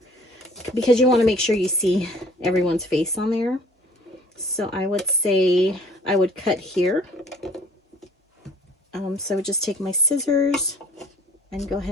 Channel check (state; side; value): normal; both; correlation 0.54